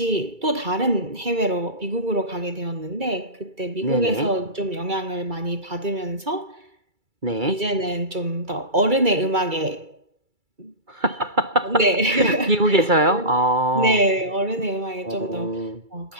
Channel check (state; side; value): late; left; 2.3 ms